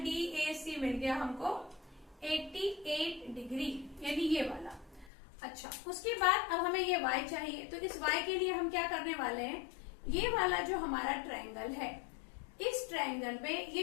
DAC मिल गया हमको 88 डिग्री, यानी ये वाला। अच्छा, उसके बाद अब हमें ये y चाहिए। तो इस y के लिए हम क्या करने वाले हैं? ये वाला जो हमारा ट्रायंगल है, इस ट्रायंगल में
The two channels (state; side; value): drops out; right; at 5.1 s